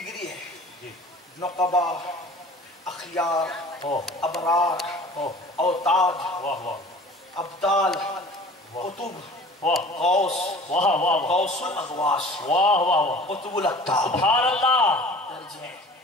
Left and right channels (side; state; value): both; normal; correlation 0.45